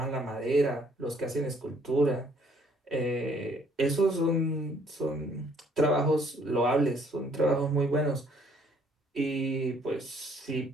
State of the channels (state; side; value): normal; both; correlation 0.63